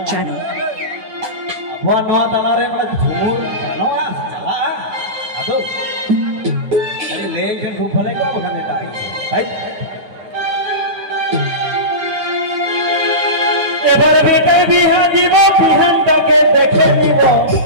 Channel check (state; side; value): late; left; 9.3 ms